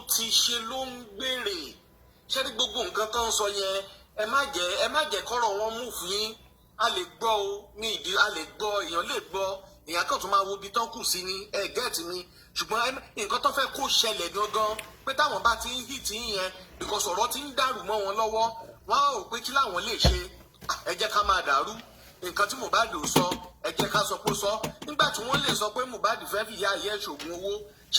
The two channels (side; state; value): both; identical; correlation 1.00